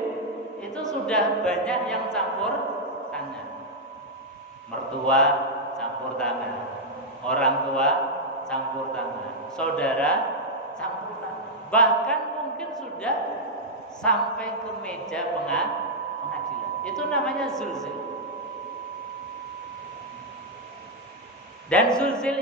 itu sudah banyak yang campur tangan. Mertua campur tangan, orang tua campur tangan, saudara campur tangan, bahkan mungkin sudah sampai ke meja pengadilan. Itu namanya zulzil. Dan zulzil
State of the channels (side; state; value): both; normal; correlation -0.04